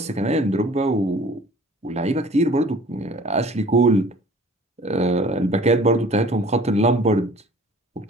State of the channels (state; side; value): normal; both; correlation 0.49